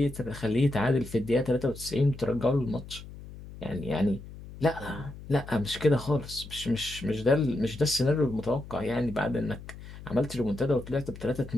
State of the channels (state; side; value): noise; left; hum, 15 dB below the sound